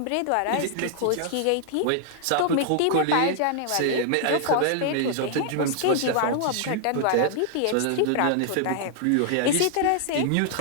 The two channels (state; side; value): different; both; correlation 0.00